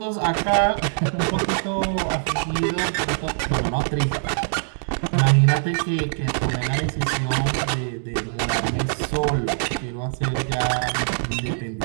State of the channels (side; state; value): left; silent; digital silence